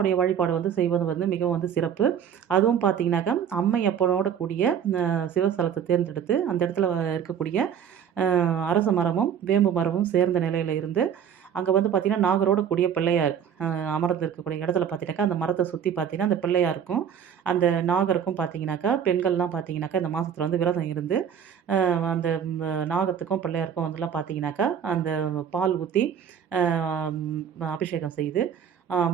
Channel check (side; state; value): left; quieter; 8.3 dB